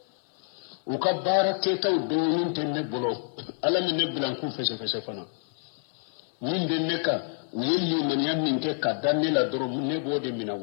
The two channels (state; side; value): silent; right; 60 dB below the other